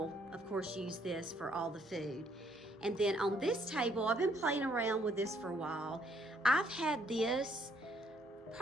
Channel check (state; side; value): normal; both; correlation 0.67